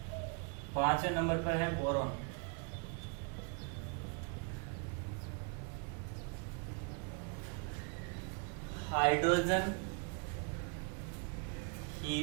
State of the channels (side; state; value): left; quieter; 38.4 dB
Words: 5वें नंबर पर है boron. Hydrogen,